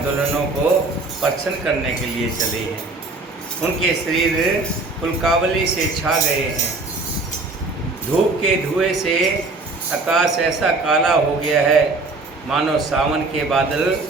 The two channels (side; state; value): left; quieter; 3.4 dB